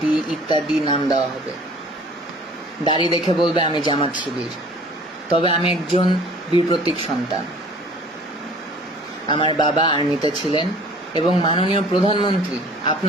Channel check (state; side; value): normal; both; correlation 0.49